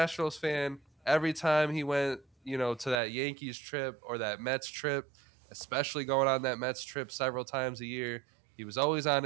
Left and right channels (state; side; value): drops out; left; at 3.0 s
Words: fan, every time he went, to that Yankees trip or that Mets trip, especially going on that Mets trip several times a year, he was always on